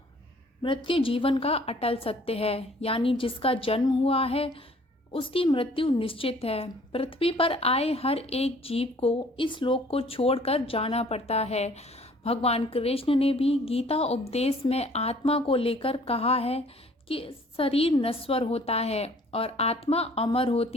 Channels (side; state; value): both; normal; correlation 0.55